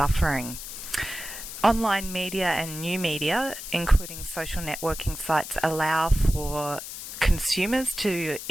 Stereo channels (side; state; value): left; noise; hiss, 10 dB below the sound